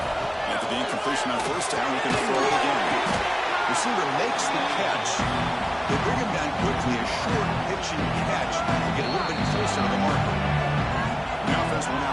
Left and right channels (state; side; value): identical; both; correlation 1.00